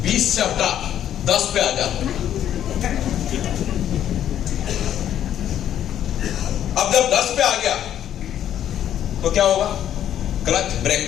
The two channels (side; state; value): right; quieter; 10.7 dB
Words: 20 से हटा 10 पे आ जा। अब जब 10 पे आ गया तो क्या होगा? Clutch